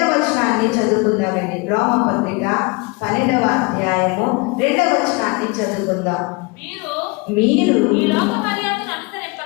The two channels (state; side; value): quieter; right; 27.4 dB